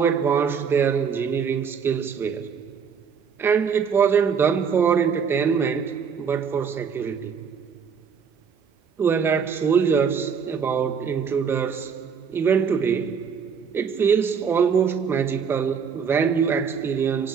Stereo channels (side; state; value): left; quieter; 6.5 dB